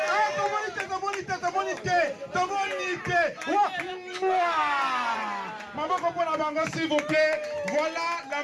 Tomonite. Maboko pour la bango, s'il vous plaît. Voilà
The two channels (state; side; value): identical; both; correlation 1.00